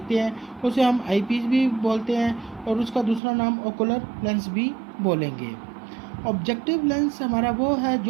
हैं उसे हम आई पीस भी बोलते हैं और उसका दूसरा नाम ओकुलर लेंस भी बोलेंगे। ऑब्जेक्टिव लेंस हमारा वो है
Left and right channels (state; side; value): drops out; left; at 3.2 s